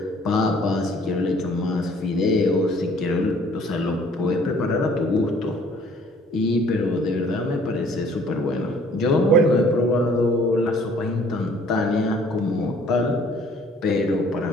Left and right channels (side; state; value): both; normal; correlation 0.57